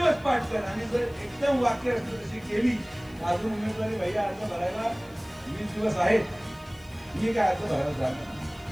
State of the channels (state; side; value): noise; left; hiss, 27 dB below the sound